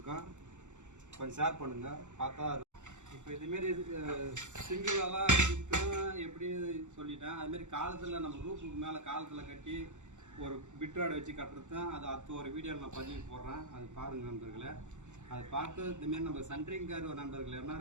கொஞ்சம் ஷேர் பண்ணுங்கள். பார்த்தா இப்போ இதுமாரி சிங்கிளெல்லாம் இருக்கும் எப்படி சொல்லிட்டேன். அதுமாரி காலத்தில் நம்ம ரூப்புக்கு மேலே காலத்தில் கட்டி ஒரு பிட்ராடு வச்சு கட்டுறது தான். அது ஒரு வீடியோவில் நான் பதிவு போடுறேன். அது பாருங்கள் நண்பர்களே. அதை பார்த்து இதுமாரி நம்ம சென்ட்ரிங்கர் நண்பர்கள்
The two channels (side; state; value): left; late; 0.85 ms